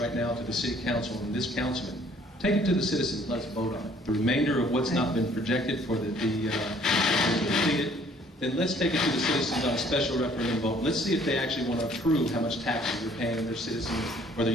now to the city council and this councilman. Take it to the citizens, let's vote on it. The remainder of what's not been projected for the completed, then let's take it to the citizens on a special referendum vote. Let's see if they actually want to approve how much taxes they're paying their citizens or their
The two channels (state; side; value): normal; both; correlation 0.59